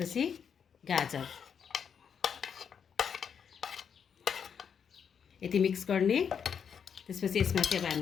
गाजर यति मिक्स गर्ने। त्यसपछि यसमा चाहिँ अब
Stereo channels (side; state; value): right; quieter; 7.3 dB